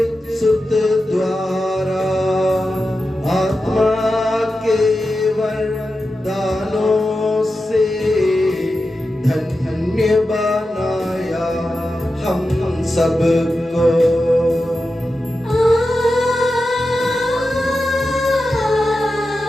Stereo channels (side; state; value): both; normal; correlation 0.91